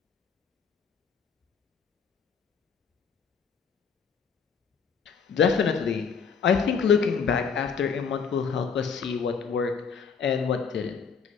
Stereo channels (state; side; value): quieter; right; 6.1 dB